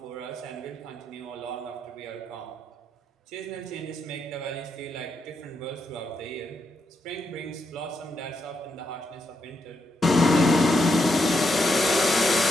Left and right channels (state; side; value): normal; both; correlation 0.81